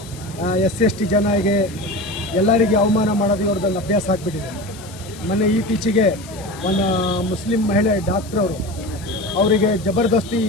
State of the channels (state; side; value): noise; left; hiss, 19 dB below the sound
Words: SC/ST ಜನರಿಗೆ ಎಲ್ಲರಿಗೆ ಅವಮಾನ ಮಾಡೋದು ಅವ್ರದ್ದೊಂದು ಅಭ್ಯಾಸ ಆಗಿಬಿಟ್ಟಿದೆ. ಮೊನ್ನೆ ಇತ್ತೀಚೆಗೆ ಒಂದು ಮುಸ್ಲಿಂ ಮಹಿಳೆ ಡಾಕ್ಟ್ರ್ ಅವರಿಗೆ ಜಬರ್ದಸ್ತಿ